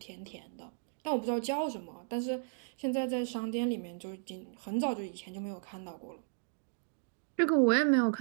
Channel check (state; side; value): silent; left; digital silence